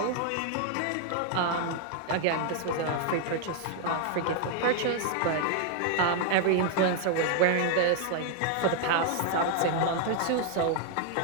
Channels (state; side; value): different; both; correlation 0.00